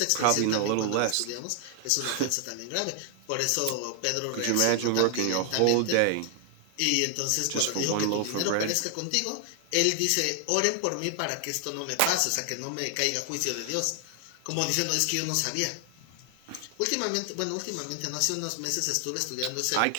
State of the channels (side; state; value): both; different; correlation 0.00